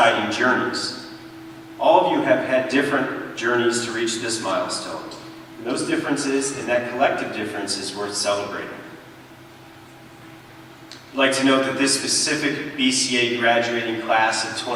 journeys. All of you have had different journeys to reach this milestone. And those differences and that collective difference is worth celebrating. I'd like to note that this specific BCA graduating class of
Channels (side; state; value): both; identical; correlation 1.00